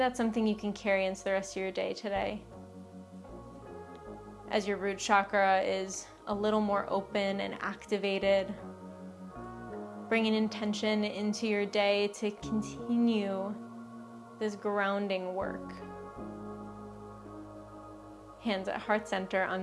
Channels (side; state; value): both; identical; correlation 1.00